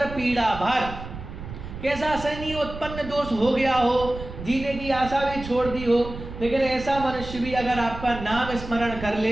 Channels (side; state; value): right; noise; rumble, 11 dB below the sound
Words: पीड़ा भार, कैसा असहनीय उत्पन्न दोष हो गया हो, जीने की आशा भी छोड़ दी हो, लेकिन ऐसा मनुष्य भी अगर आपका नाम स्मरण कर